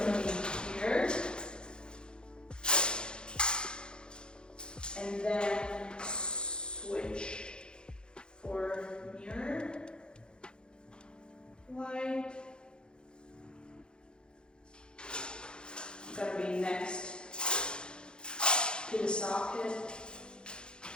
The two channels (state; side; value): late; right; 0.049 ms